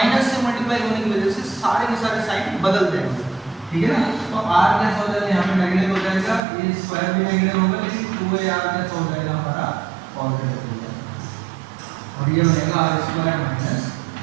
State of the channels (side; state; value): left; drops out; at 6.4 s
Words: से मल्टीप्लाई होने की वजह से सारे के सारे साइन बदल जाएंगे। ठीक है ना, तो R कैसे हो जाएगा, यहाँ पे नेगेटिव हो जाएगा, A स्क्वायर भी नेगेटिव होगा, लेकिन 2AR कैसे हो जाएगा हमारा पॉजिटिव हो जाएगा, और ये बनेगा R square minus A